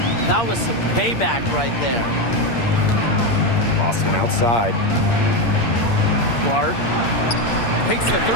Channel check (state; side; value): late; right; 8.7 ms